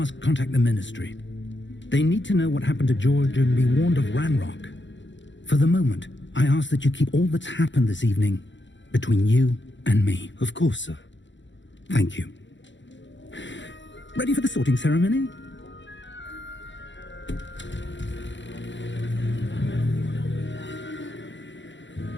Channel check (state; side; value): late; right; 0.54 ms